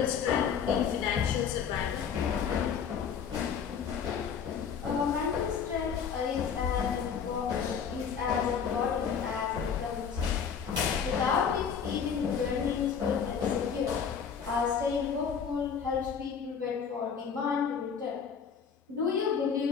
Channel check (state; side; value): quieter; right; 6.9 dB